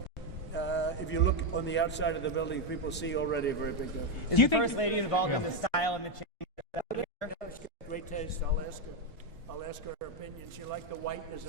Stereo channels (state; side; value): normal; both; correlation 0.05